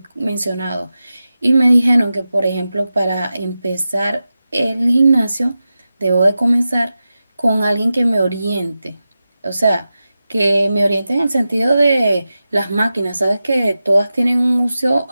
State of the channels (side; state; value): both; inverted; correlation -0.93